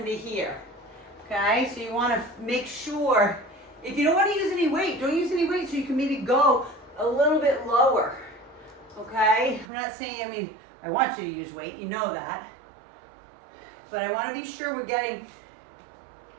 here. Okay, so you want to make sure, if you don't want to use any weight, don't use any weight, so you can maybe go a little bit lower. Okay, I'm not saying, I want you to use weight, you know that. But I want to be sure we're getting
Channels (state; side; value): drops out; left; at 9.7 s